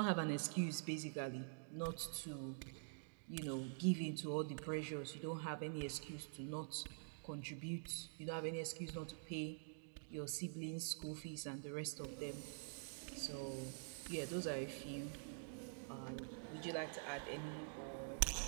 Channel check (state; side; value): silent; left; digital silence